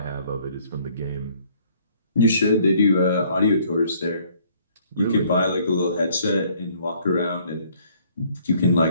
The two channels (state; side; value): inverted; both; correlation -0.62